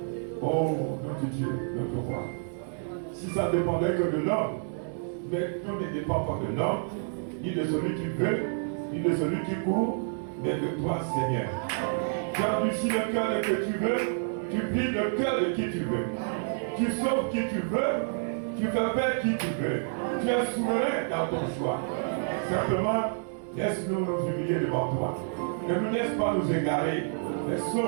Oh, notre Dieu, notre roi. Si ça dépendait que de l'homme, mais tout ne dépend pas de l'homme, ni de celui qui veut, ni de celui qui court, mais de toi, Seigneur. Tu endurcis le cœur que tu veux, tu plies le cœur de qui tu veux. Tu sauves qui tu veux, tu fais faire qui tu veux. Tu es souverain dans ton choix. Simplement, laisse-nous nous humilier devant toi. Ne nous laisse pas nous égarer, mais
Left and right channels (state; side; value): silent; left; digital silence